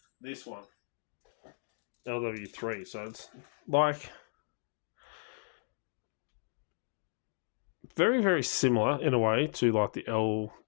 this one, LW3. So it's like very, very similar in a way to like the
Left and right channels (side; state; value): right; silent; digital silence